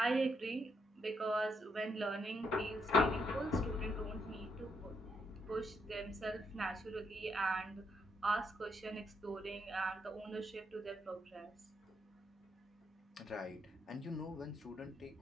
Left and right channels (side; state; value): both; normal; correlation 0.76